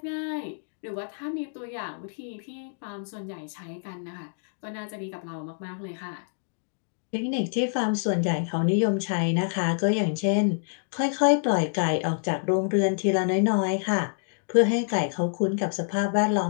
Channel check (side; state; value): right; silent; digital silence